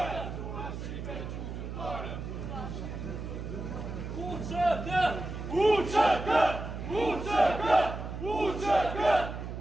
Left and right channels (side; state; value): right; noise; hum, 7 dB below the sound